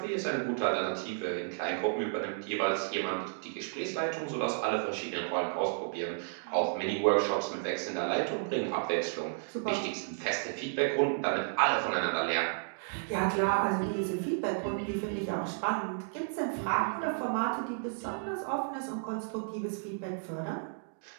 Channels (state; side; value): silent; left; digital silence